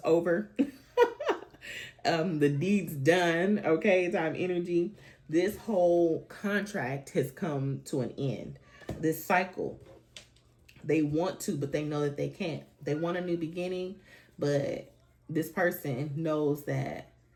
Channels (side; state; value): both; identical; correlation 1.00